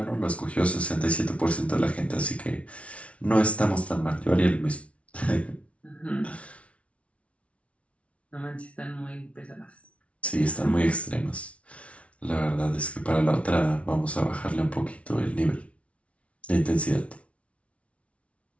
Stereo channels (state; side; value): late; right; 0.063 ms